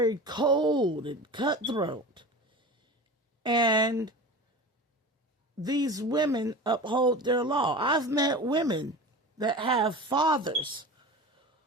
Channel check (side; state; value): both; normal; correlation 0.33